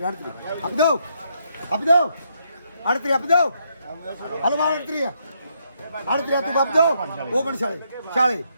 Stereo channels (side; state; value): both; inverted; correlation -0.76